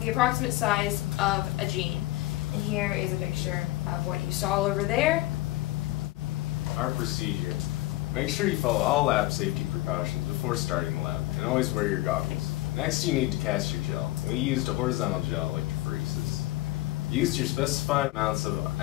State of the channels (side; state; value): right; quieter; 17.6 dB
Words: approximate size of a gene. And here is a picture of what you saw over there. Our procedure. Make sure you follow all lab safety precautions before starting the lab, and always wear your goggles. Next, you need to cast your gel. We used a horizontal gel electrophoresis. Use your specified amounts of